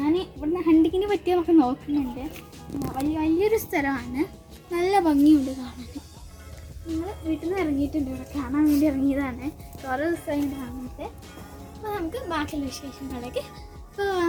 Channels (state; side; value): identical; both; correlation 1.00